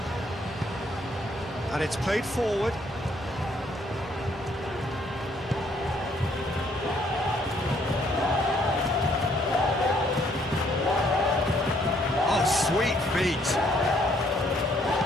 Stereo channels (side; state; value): both; normal; correlation 0.67